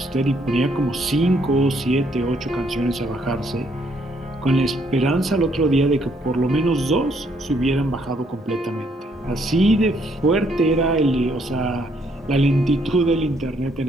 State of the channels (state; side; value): normal; both; correlation 0.70